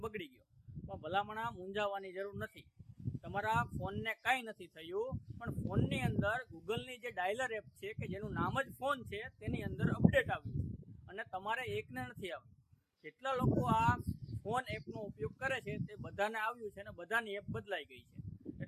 બગડી ગયો. પણ ભલામણ મૂંઝાવાની જરૂર નથી. તમારા ફોનને કાંઈ નથી થયું, પણ ફોનની અંદર ગૂગલની જે ડાયલર એપ છે કે જેનું નામ જ ફોન છે તેની અંદર અપડેટ આવ્યું છે અને તમારે એકને નથી આવ્યું. જેટલા લોકો આ ફોન એપનો ઉપયોગ કરે છે તે બધાને આવ્યું છે અને બધાની એપ બદલાઈ ગઈ છે.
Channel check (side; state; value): both; identical; correlation 1.00